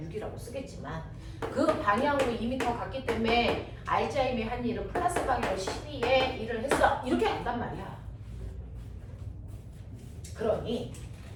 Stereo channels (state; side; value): identical; both; correlation 1.00